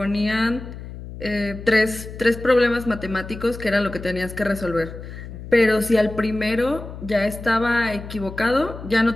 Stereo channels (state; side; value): noise; left; hum, 12 dB below the sound